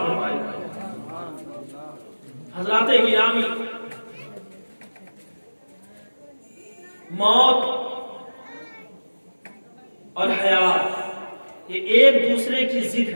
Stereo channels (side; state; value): both; inverted; correlation -1.00